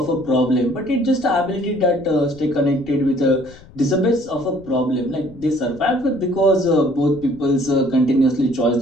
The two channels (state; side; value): noise; left; rumble, 23 dB below the sound